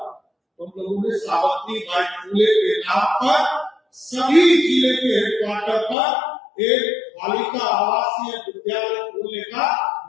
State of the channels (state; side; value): drops out; right; at 6.0 s